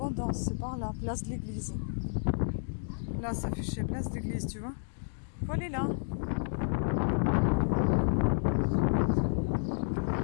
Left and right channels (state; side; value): silent; right; digital silence